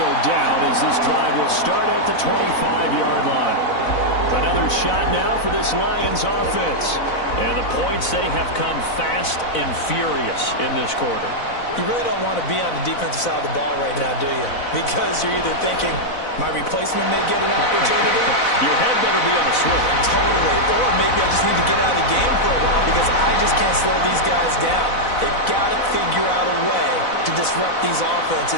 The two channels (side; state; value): right; late; 4.0 ms